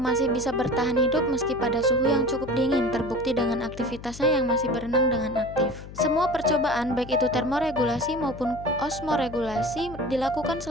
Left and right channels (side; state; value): left; noise; hum, 14 dB below the sound